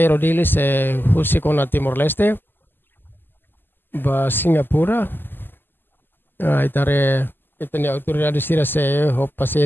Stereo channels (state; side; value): late; right; 0.095 ms